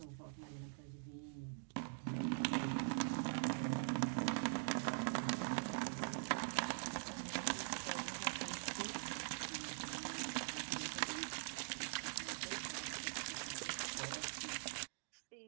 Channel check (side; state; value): left; silent; digital silence